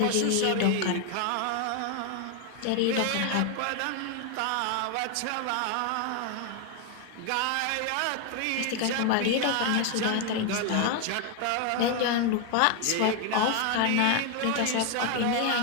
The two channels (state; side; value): different; both; correlation 0.01